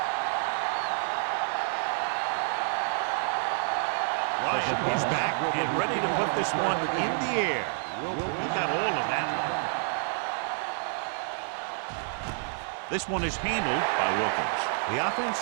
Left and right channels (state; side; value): silent; left; digital silence